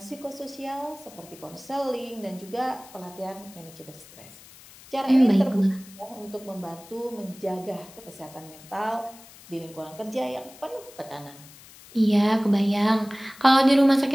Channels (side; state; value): left; noise; hiss, 21 dB below the sound